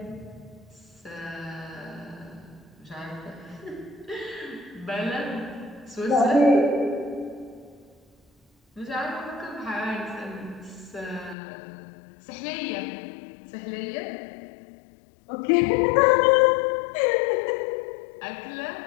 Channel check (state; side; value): drops out; right; at 11.4 s